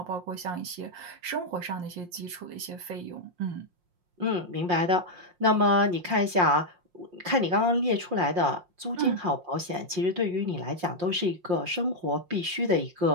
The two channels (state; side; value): late; left; 5.6 ms